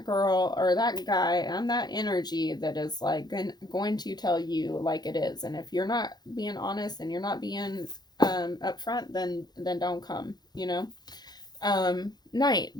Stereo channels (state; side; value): late; right; 0.20 ms